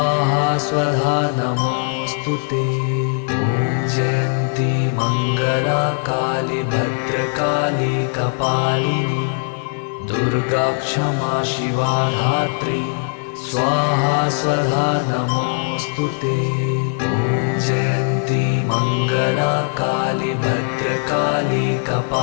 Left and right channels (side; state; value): right; silent; digital silence